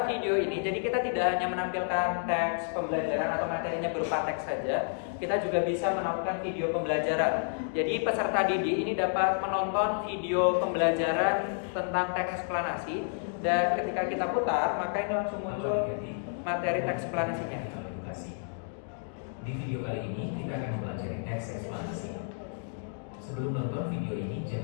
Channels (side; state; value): right; silent; digital silence